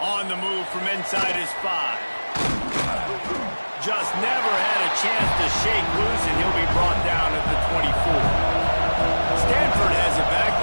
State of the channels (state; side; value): inverted; both; correlation -1.00